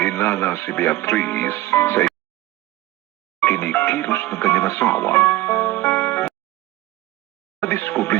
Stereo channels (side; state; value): left; quieter; 16.5 dB